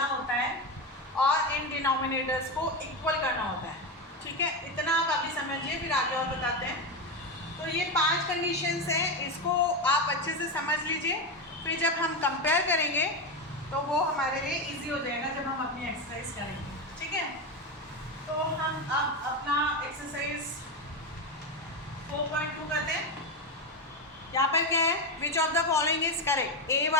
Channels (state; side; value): normal; both; correlation 0.13